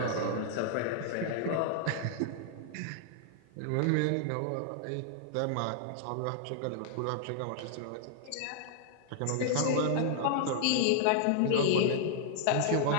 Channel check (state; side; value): different; both; correlation -0.01